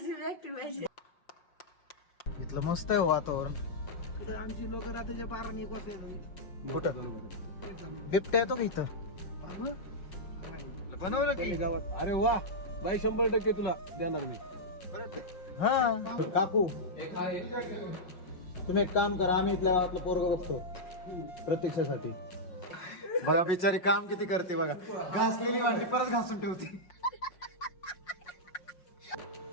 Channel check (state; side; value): late; right; 5.6 ms